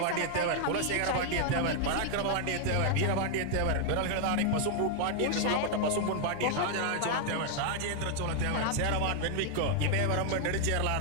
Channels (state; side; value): different; both; correlation 0.00